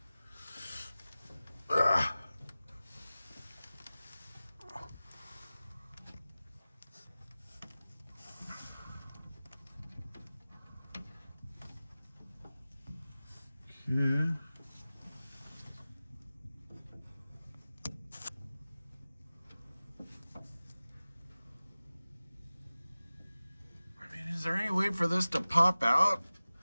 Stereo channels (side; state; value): both; inverted; correlation -0.97